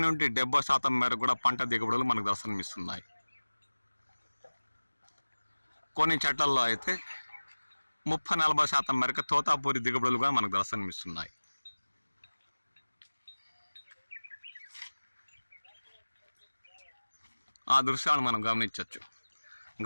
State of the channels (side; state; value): both; inverted; correlation -1.00